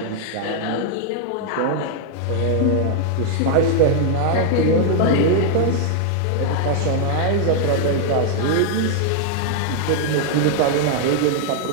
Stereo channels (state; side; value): different; both; correlation 0.00